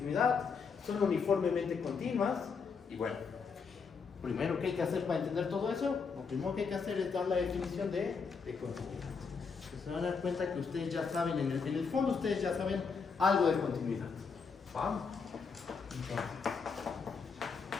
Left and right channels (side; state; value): right; quieter; 5.4 dB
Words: son uniformemente continuas, y bueno, primero, ¿qué hay que hacer para entender todo eso? Lo primero que hay que hacer es dar la definición de continuidad. Se van a dar cuenta que ustedes ya saben, en el fondo ustedes ya saben algo de continuidad. ¿Vamos? Entonces,